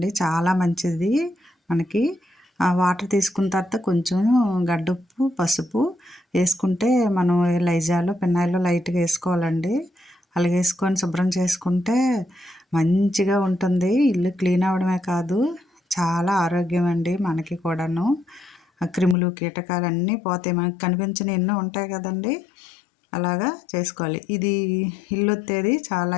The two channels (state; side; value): drops out; right; at 19.2 s